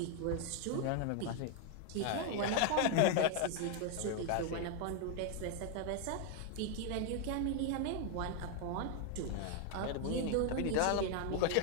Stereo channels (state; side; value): different; both; correlation 0.01